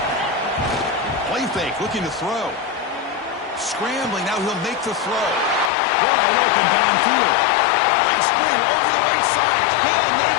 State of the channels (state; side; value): drops out; right; at 5.7 s